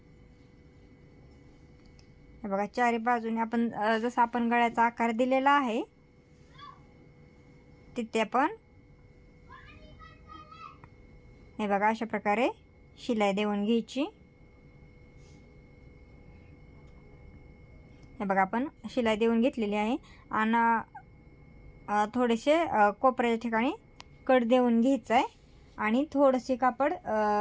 हे बघा चारी बाजूने आपण जसा आपण गळ्याचा आकार दिलेला आहे तिथे आपण हे बघा अशा प्रकारे शिलाई देऊन घ्यायची. हे बघा आपण शिलाई देऊन घेतलेली आहे आणि थोडेसे कोपऱ्याच्या ठिकाणी कट देऊन घ्यायचं आहे आणि थोडेसे कापड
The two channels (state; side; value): identical; both; correlation 1.00